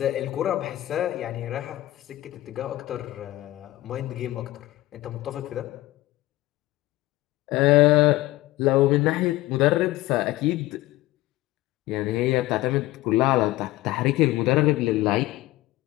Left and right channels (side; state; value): right; quieter; 17.4 dB